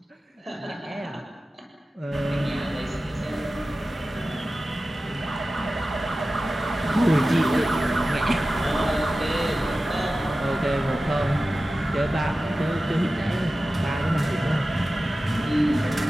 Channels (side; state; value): both; normal; correlation 0.95